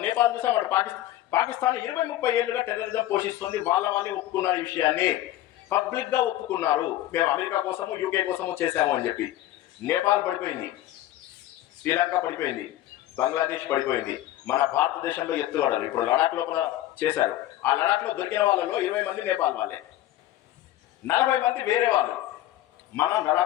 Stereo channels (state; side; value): quieter; right; 14.3 dB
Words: నేపాల్ చూసాం, అటు పాకిస్తాన్ 20-30 ఏళ్ళుగా టెర్రరిజం పోషిస్తుంది. వాళ్ళే ఒప్పుకున్నారు ఈ విషయాన్ని, పబ్లిక్ గా ఒప్పుకున్నారు. మేము అమెరికా కోసము యూకే కోసము చేశాము అని చెప్పి. నేపాల్ పడిపోయింది, శ్రీలంక పడిపోయింది, బంగ్లాదేశ్ పడిపోయింది. మన భారతదేశంలో ఎత్తుగడలు ఇప్పుడు లడాక్ లోపల చేశారు. ఆ లడాక్ లో దొరికిన వాళ్ళలో 20 మంది నేపాల్ వాళ్ళే, 40 మంది వేరే వాళ్ళు. మన